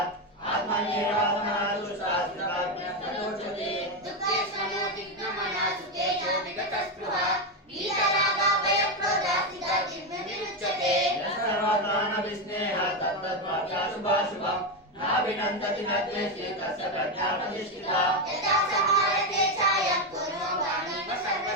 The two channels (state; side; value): normal; both; correlation 0.09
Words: आत्मन्येवात्मना तुष्टा स्थिताज्ञस्तदोच्यते दुःखेष्वनो दिग्भ्रमणा सुतेजो विगतस्पृहा वीतरागाभयक्रोधा स्थिता जिह्वविरुच्यते सर्वत्राणविस्नेहः तत्तद्वाक्याशुभाशुभम् नाभिनन्दति न द्वेष्टि तस्य प्रज्ञा प्रतिष्ठिता यदा समारते छायं पूर्वं वाणीव